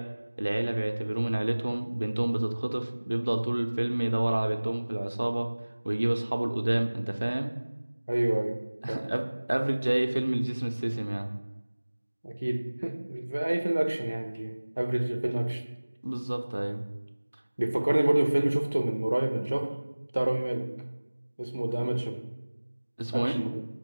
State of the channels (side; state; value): both; inverted; correlation -1.00